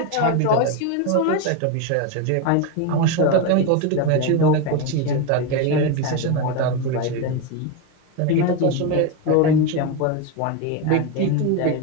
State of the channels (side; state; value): both; different; correlation 0.03